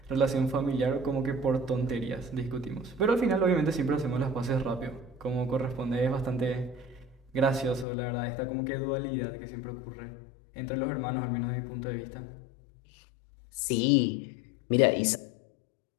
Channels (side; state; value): right; drops out; at 7.9 s